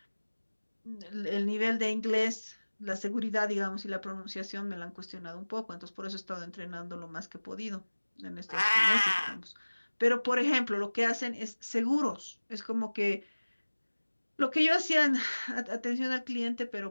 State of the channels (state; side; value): inverted; both; correlation -1.00